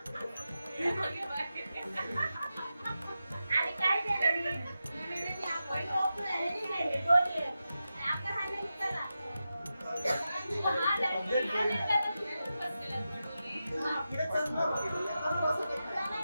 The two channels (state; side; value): inverted; both; correlation -0.91